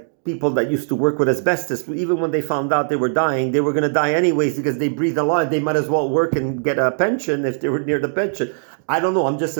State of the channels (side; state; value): left; silent; digital silence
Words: people that used to work with asbestos, even when they found out they were dying, they were going to die anyways because they breathed a lot. They might as well work and get a pension if they were near the pension. I don't know. I'm just